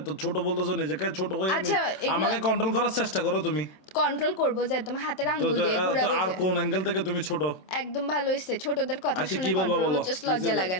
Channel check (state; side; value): late; right; 27 ms